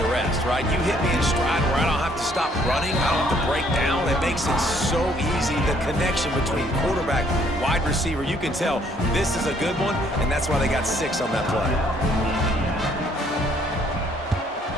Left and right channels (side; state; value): both; normal; correlation 0.65